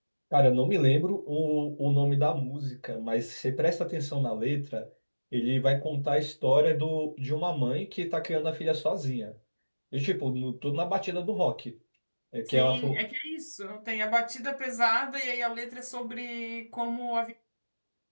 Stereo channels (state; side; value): inverted; both; correlation -1.00